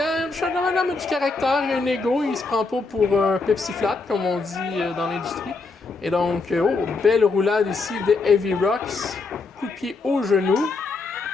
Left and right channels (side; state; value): right; quieter; 3.9 dB